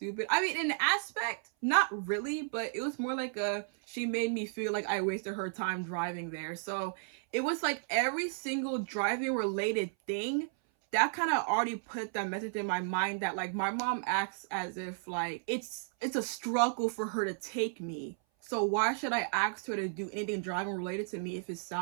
I mean, in the aspect, not really, but it was more like she made me feel like I wasted her time driving there. So it was like every single driving related thing that kind of already put that message in my mind that like my mom acts as if like it's a struggle for her to take me. So why should I ask her to do anything driving related to me if it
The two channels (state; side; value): silent; left; 55 dB below the other